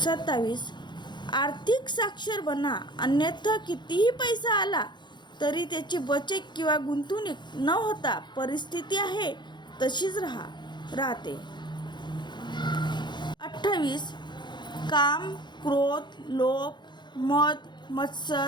आर्थिक साक्षर बना, अन्यथा कितीही पैसा आला तरी त्याची बचत किंवा गुंतवणूक न होता परिस्थिती आहे तशीच राहते. 28, काम, क्रोध, लोभ, मद,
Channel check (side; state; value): right; late; 0.22 ms